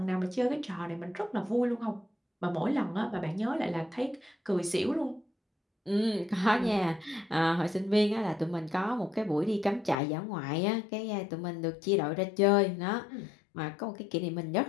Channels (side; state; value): right; drops out; at 10.0 s